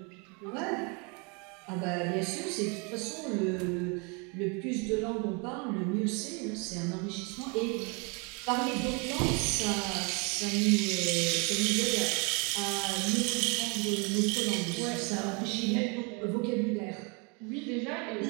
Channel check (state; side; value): quieter; left; 32.3 dB